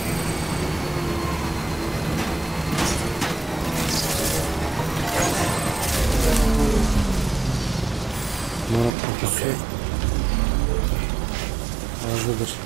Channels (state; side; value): drops out; left; at 8.9 s